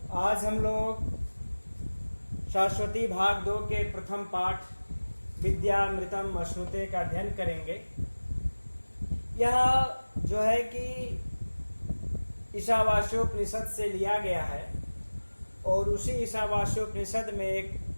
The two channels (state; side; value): inverted; both; correlation -1.00